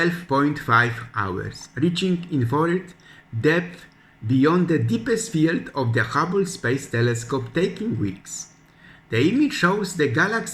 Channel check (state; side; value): identical; both; correlation 1.00